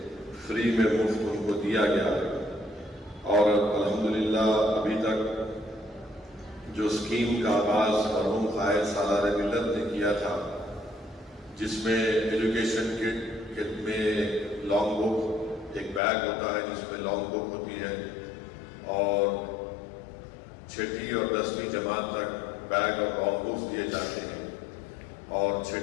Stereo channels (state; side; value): drops out; right; at 16.0 s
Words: فری میں مفت ان کو دیا گیا ہے۔ اور الحمدللہ ابھی تک جو اسکیم کا آغاز مرحوم قائد سالار ملت نے کیا تھا، جس میں ایجوکیشن کٹ میں لانگ بک ایک بیگ ہوتا ہے جس میں لانگ بک ہوتی ہے، اور 6ٹھی اور 10ویں جماعت تک بیگ اور لانگ بکس دیے جاتے ہیں، اور